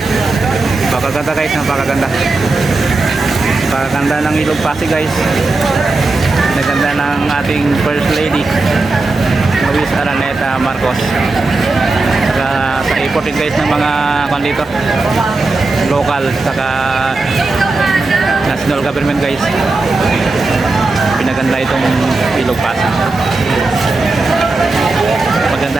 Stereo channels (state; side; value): quieter; left; 3.4 dB